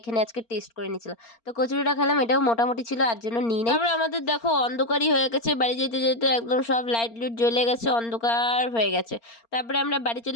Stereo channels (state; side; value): late; right; 4.3 ms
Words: আজকে টেস্ট করে নিয়েছিলাম। তো কচুরিটা খেলাম, এটাও মোটামুটি ছিল, আর জন্য নিই নাই। তারপর আমাদের দেখো অন্ধকারই হয়ে গেছে, বাড়ি যেতে যেতে একদম সব লাইট লুট জ্বলে গেছে, অন্ধকার হয়ে গেছে। তারপরে আমরা বাড়ি